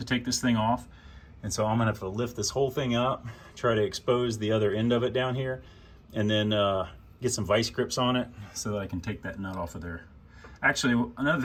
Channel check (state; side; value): identical; both; correlation 1.00